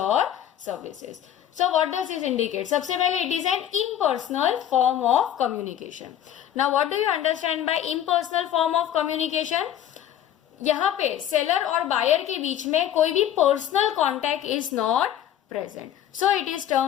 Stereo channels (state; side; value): quieter; right; 10.8 dB